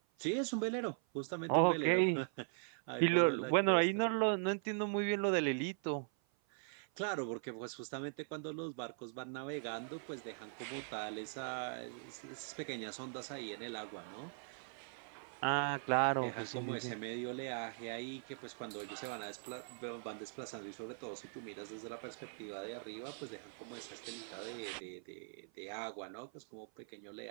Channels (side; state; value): left; silent; 51 dB below the other